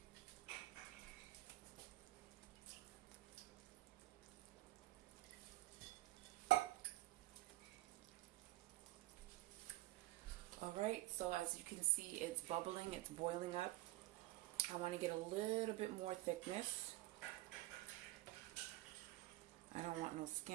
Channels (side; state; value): left; quieter; 18.4 dB